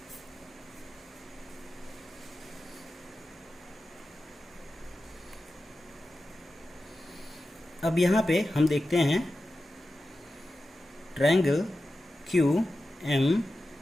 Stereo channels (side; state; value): both; normal; correlation 0.93